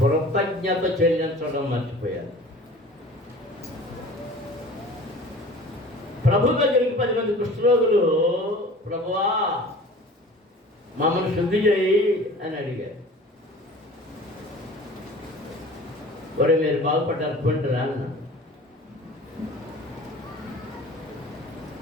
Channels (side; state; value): both; normal; correlation 0.43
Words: చెల్లించడం మర్చిపోయారు. ప్రభు దగ్గరికి 10 మంది కుష్ఠరోగులు, ప్రభువా మమ్మల్ని శుద్ధి చేయి అని అడిగారు. ఒరే మీరు బాగుపడ్డారు కొంటారా అన్న.